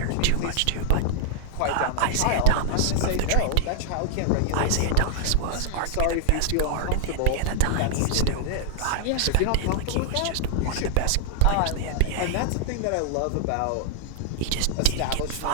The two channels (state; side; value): different; both; correlation -0.01